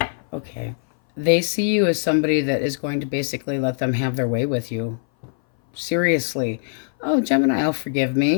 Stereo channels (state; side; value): silent; right; 60 dB below the other